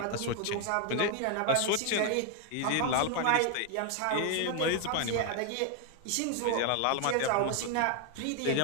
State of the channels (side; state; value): both; different; correlation 0.00